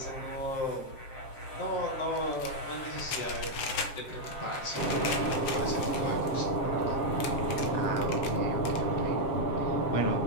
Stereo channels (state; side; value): late; right; 7.6 ms